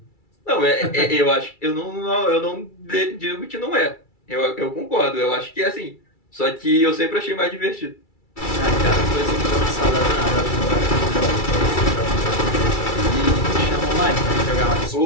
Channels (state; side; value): late; right; 2.3 ms